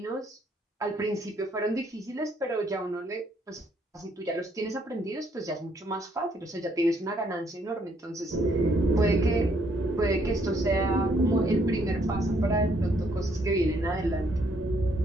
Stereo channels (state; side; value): normal; both; correlation 0.69